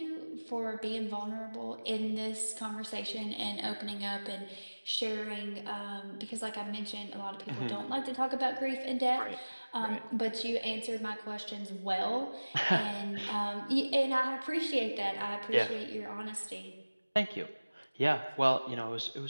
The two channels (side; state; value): both; inverted; correlation -1.00